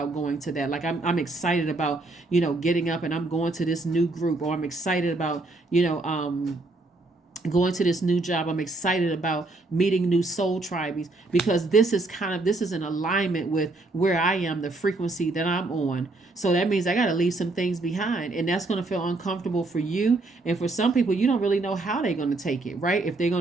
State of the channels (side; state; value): left; quieter; 3.1 dB